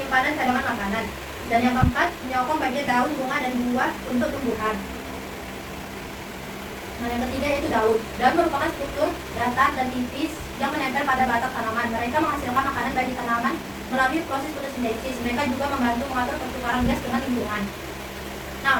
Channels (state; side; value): identical; both; correlation 1.00